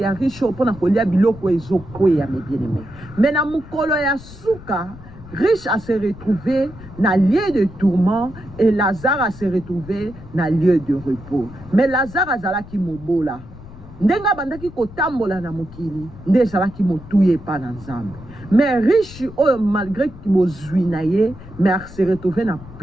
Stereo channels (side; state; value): left; noise; rumble, 17 dB below the sound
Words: riche po na kolia biloko ezokwea mais bien aimé. Mais na mukolo ya suka riche a se retrouvé dans lieu de tourment et Lazare a se retrouvé dans lieu de repos. Mais Lazare azalaki mobola. Ndenga bandaki kotambola na mokili, nde azalaki motuye pa na Nzambe. Mais riche oyo malgré ki bozwi na ye, mais a se retrouvé na